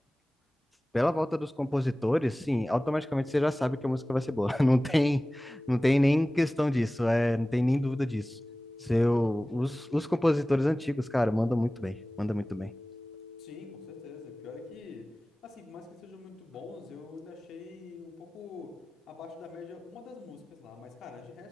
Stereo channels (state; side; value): normal; both; correlation 0.97